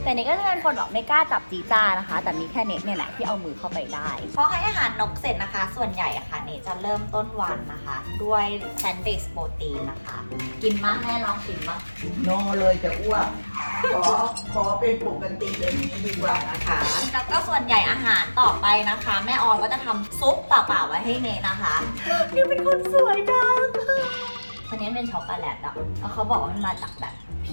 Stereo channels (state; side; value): inverted; both; correlation -1.00